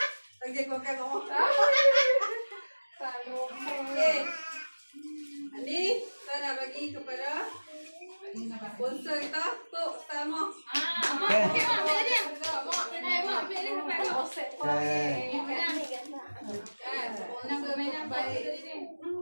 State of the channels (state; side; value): inverted; both; correlation -1.00